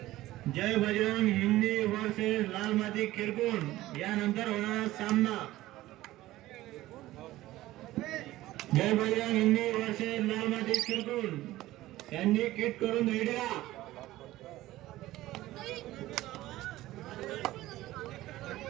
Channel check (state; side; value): quieter; left; 16.3 dB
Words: Bajrang Hindi versus लाल माती किरकोण यानंतर होणार सामना. जय बजरंग हिंदी वर्सेस लाल माती किरकोण यांनी किट करून रेडी राहा.